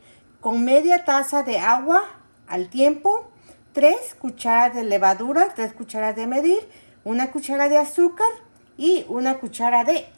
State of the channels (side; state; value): both; inverted; correlation -1.00